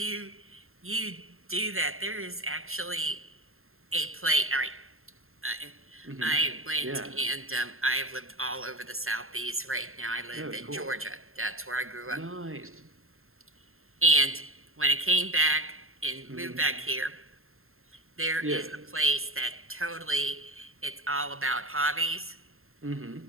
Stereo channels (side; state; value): left; late; 0.61 ms